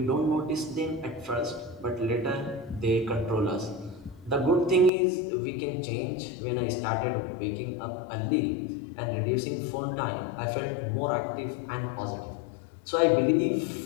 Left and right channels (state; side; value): drops out; right; at 4.9 s